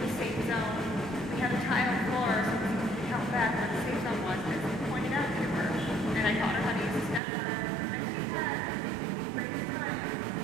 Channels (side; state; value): left; drops out; at 7.2 s